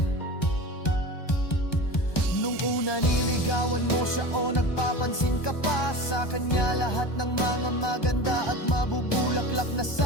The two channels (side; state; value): right; late; 1.2 ms